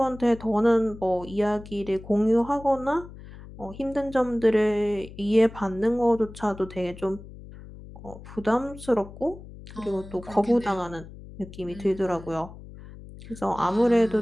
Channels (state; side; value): noise; left; hum, 16 dB below the sound